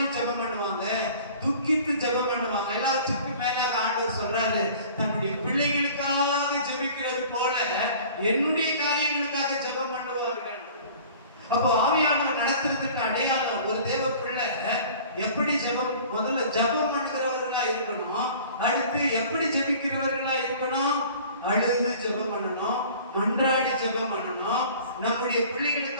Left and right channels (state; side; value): inverted; both; correlation -0.46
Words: ஜெபம் பண்ணுவாங்க, துக்கித்து ஜெபம் பண்ணுவாங்க. எல்லாத்துக்கும் மேலாக ஆண்டவர் சொல்றாரு, தன்னுடைய பிள்ளைகளுக்காக ஜெபிக்கிறது போல என்னுடைய காரியங்களுக்காக ஜெபம் பண்ணுவார்கள். அப்போ ஆவியானவர் நடத்துறதுக்கு அடையாளம், ஒரு தேவ பிள்ளை எப்படி ஜெபம், முதல்ல ஜெபம் பண்ணுகிறவர்களா இருக்கணும். அடுத்து எப்படி ஜெபிக்கிறவர்களா இருக்கணும்? அழுது ஜெபம் பண்ணணும், மன்றாடி ஜெபம் பண்ணணும். நம்முடைய